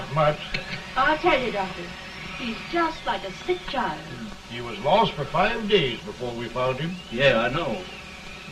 much. I'll tell you, Doctor, he's just like a sick child. He was lost for 5 days before we found him. Yeah, I know.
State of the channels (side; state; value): both; identical; correlation 1.00